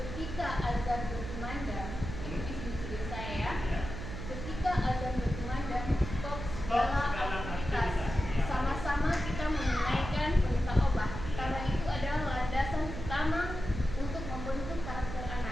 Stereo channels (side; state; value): right; noise; hum, 7 dB below the sound